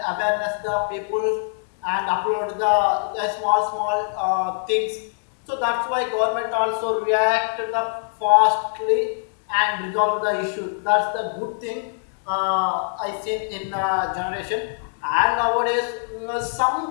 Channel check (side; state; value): right; silent; digital silence